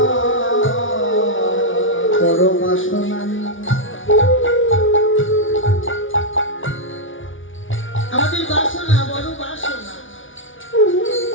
বড় বাসনা নিয়ে। আমাদের বাসনা বড় বাসনা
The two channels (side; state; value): right; late; 0.57 ms